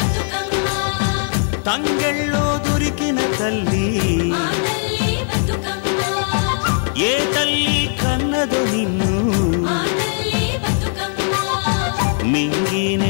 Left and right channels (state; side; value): silent; right; digital silence